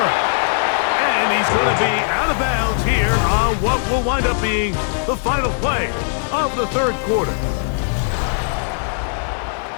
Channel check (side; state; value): right; silent; 63 dB below the other